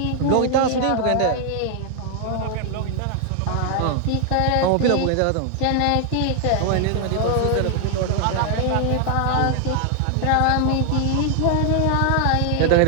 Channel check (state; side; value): different; both; correlation 0.00